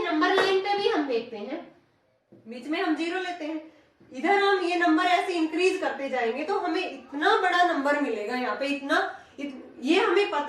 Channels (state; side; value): identical; both; correlation 1.00